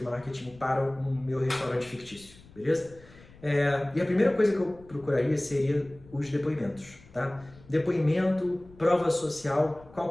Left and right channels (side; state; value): left; noise; rumble, 23 dB below the sound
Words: marketing para o meu restaurante fictício, beleza? E a primeira coisa que eu procuraria seria os depoimentos, tá? Depoimento, prova social,